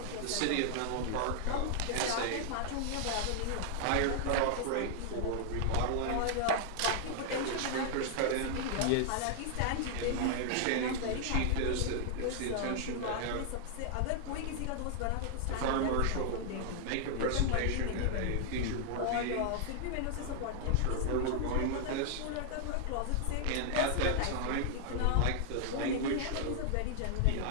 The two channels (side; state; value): both; different; correlation 0.00